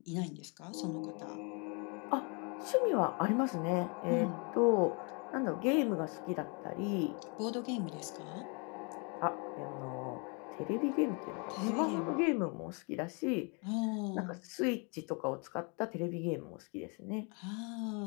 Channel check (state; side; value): quieter; right; 34.1 dB